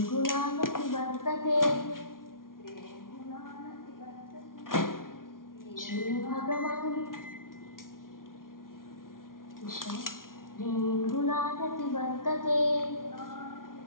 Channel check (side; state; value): right; late; 0.91 ms